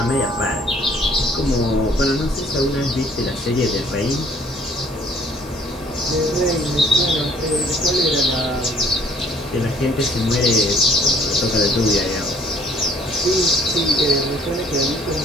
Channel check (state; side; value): normal; both; correlation 0.58